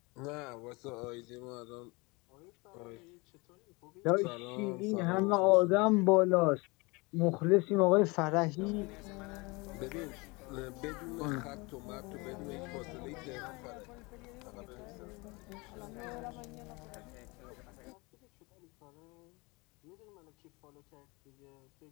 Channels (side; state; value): right; quieter; 26.3 dB